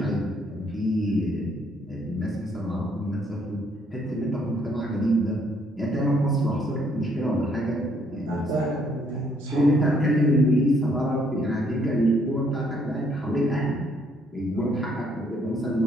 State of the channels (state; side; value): normal; both; correlation 0.68